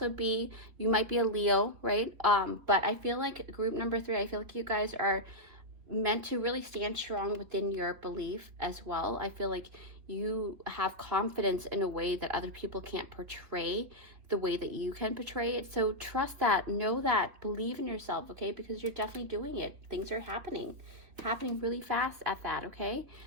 be, you might be a Leo, right? But I feel like group number 3, I feel like you guys are meant to really stand strong within your belief as well. I feel like you have confidence in a way that other people can't portray the way that you can portray it. So trust that, know that, believe in yourself, okay? Because you're definitely doing it. Things are happening really fast at that, okay?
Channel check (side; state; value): left; late; 3.6 ms